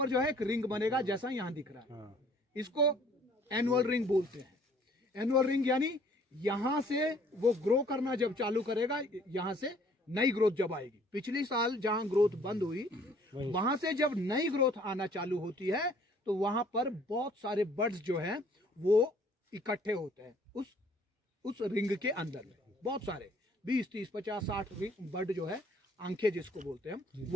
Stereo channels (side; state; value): both; normal; correlation 0.58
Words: जो है एक रिंग बनेगा जैसा यहाँ दिख रहा है, इसको एनुअल रिंग बोलते हैं। एनुअल रिंग यानी यहाँ से वो ग्रो करना जब चालू करेगा, यहाँ से नई ग्रोथ जब आएगी। पिछली साल जहां ग्रोथ बंद हुई, वहां से जब नई ग्रोथ आना चालू होती है तो वहां पर बहुत सारे बर्ड्स जो हैं वो इकट्ठे होते हैं उस रिंग के अंदर में। बहुत सारे 20, 30, 50, 60 बर्ड जो है, आंखें जिसको बोलते हैं,